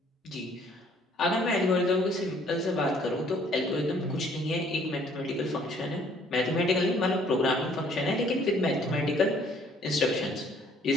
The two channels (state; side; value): normal; both; correlation 0.61